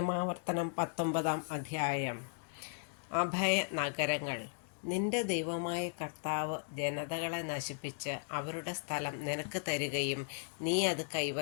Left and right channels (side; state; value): right; silent; digital silence